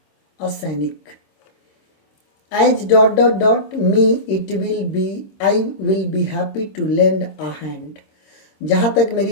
असैनिक। As dot dot dot me it will be, I will be happy to lend a hand. जहाँ तक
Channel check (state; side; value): late; right; 26 ms